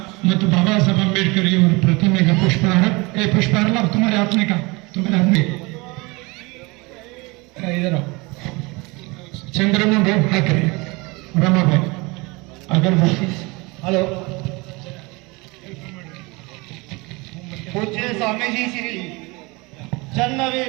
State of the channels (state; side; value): quieter; left; 25.7 dB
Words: ಮತ್ತು बाबा साहेब अंबेडकर ಇವರ ಪ್ರತಿಮೆಗೆ ಪುಷ್ಪಹಾರ पुष्पहार लाभ तुम्हारे हाथ में का तुम्हारे हाथ में इधर आओ. चंद्रमा भाई हाँ करिए रमा भाई अगरबत्ती. हॅलो. पूज्य स्वामीजी श्री